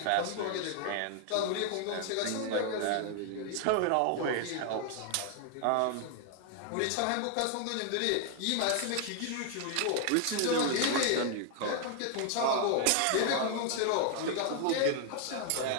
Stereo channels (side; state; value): both; different; correlation 0.00